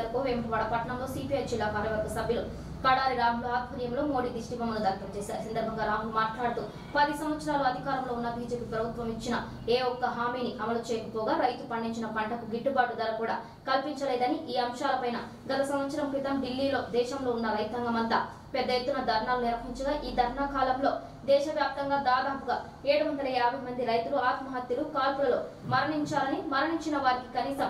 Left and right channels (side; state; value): both; identical; correlation 1.00